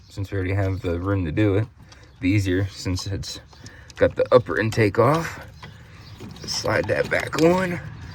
since we already have the room to do it, be easier since it's got the upper intake off. Just slide that back on.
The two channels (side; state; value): both; identical; correlation 1.00